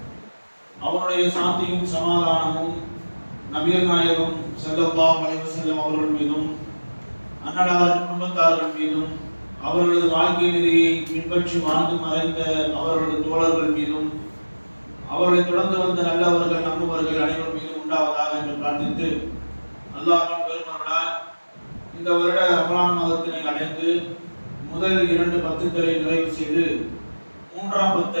அவருடைய சாந்தியும் சமாதானமும் நபிகள் நாயகம் ஸல்லல்லாஹு அலைஹி வஸல்லம் அவர்கள் மீதும் அன்னலார் குடும்பத்தார்கள் மீதும் அவர்களது வாழ்க்கை நெறியை பின்பற்றி வாழ்ந்து மறைந்த அவர்களது தோழர்கள் மீதும் அவர்களை தொடர்ந்து வந்த நல்லவர்கள் நம்புவர்கள் அனைவரும் மீதும் உண்டாவதாக என்று பிரார்த்தித்து, அல்லாஹ்வின் பெருமருளால் இந்த வருட ரமலான் மாதத்தினை அடைந்து முதல் 2 பத்துக்களை நிறைவு செய்து 3ஆம்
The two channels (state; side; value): inverted; both; correlation -1.00